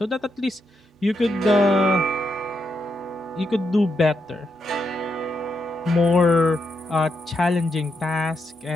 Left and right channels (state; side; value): normal; both; correlation 0.82